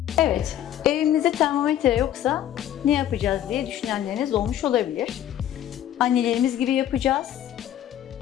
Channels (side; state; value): right; quieter; 11.3 dB